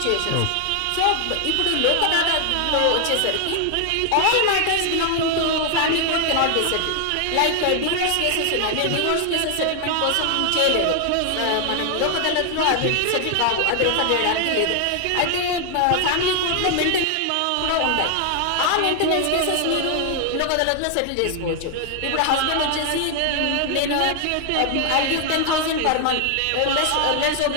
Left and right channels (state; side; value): different; both; correlation 0.00